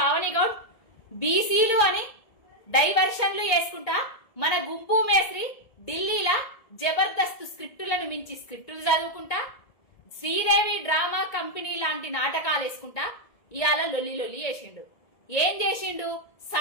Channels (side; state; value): right; late; 1.7 ms